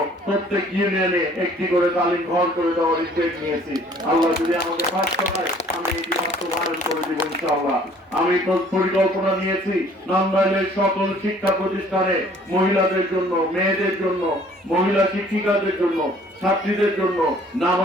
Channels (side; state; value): both; normal; correlation 0.56